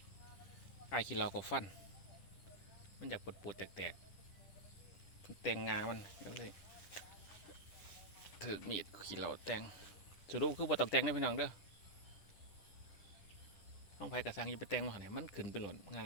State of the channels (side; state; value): right; late; 10 ms